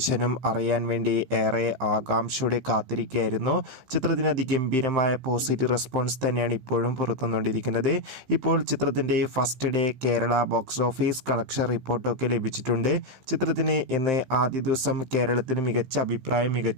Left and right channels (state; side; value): late; left; 15 ms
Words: അറിയാൻ വേണ്ടി ഏറെ ആകാംക്ഷയോടെ കാത്തിരിക്കുകയായിരുന്നു. ചിത്രത്തിന് അതിഗംഭീരമായ പോസിറ്റീവ് റെസ്പോൺസ് തന്നെയാണ് ഇപ്പോഴും പുറത്തുവന്നുകൊണ്ടിരിക്കുന്നത്. ഇപ്പോൾ ചിത്രത്തിൻ്റെ first day Kerala box office collection റിപ്പോർട്ടൊക്കെ ലഭിച്ചിട്ടുണ്ട്. ചിത്രത്തിന് ഇന്ന് ആദ്യ ദിവസം കേരളത്തിൽ മികച്ച അഭിപ്രായം,